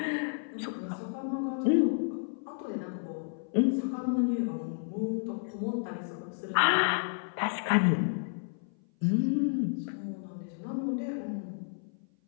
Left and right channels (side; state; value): right; silent; 55 dB below the other